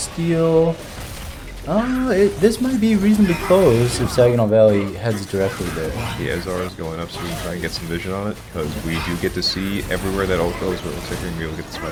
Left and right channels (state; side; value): identical; both; correlation 1.00